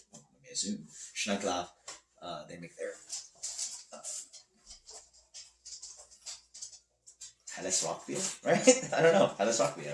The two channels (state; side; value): identical; both; correlation 1.00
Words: may assume Schneckler. They make their Helles Rauch beer, right? I don't know. Helles Rauch